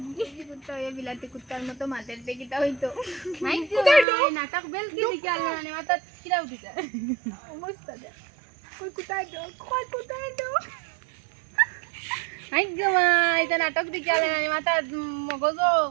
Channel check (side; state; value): left; drops out; at 4.0 s